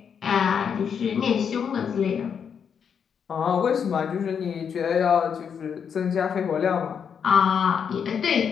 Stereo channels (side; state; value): right; quieter; 7.2 dB